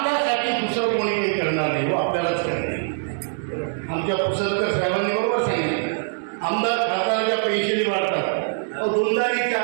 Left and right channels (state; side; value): silent; left; digital silence